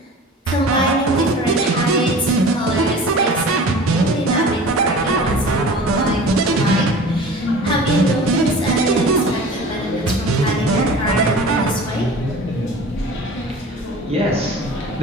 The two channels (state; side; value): normal; both; correlation 0.40